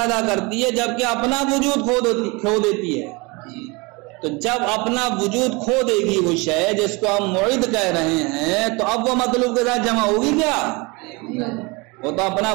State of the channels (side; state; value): left; quieter; 26.8 dB